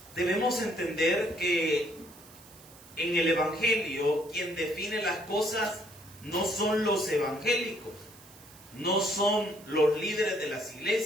Debemos entender que en el Evangelio quien define las cosas no son los evangélicos, no son los líderes de las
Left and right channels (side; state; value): right; noise; hiss, 22 dB below the sound